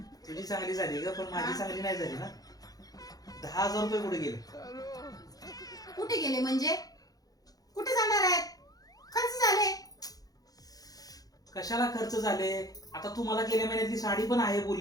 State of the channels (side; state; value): right; late; 0.18 ms